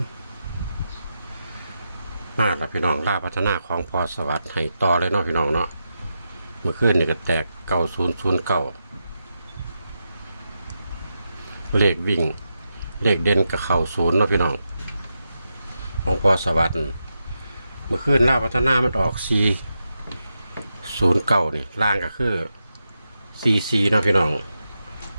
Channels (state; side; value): inverted; both; correlation -0.87